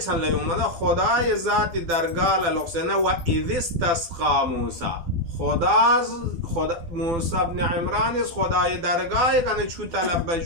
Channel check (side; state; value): left; late; 12 ms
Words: چند لیومده خدای ذات درگاه للقسنه و اذ استسقا موسی خدا موسی ابن عمران از خدای درگاه کنه چو طلب